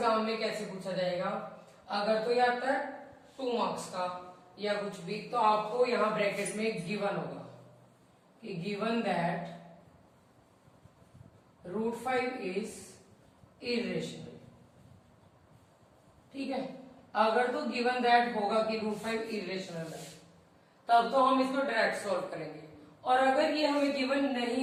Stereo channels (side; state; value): both; identical; correlation 1.00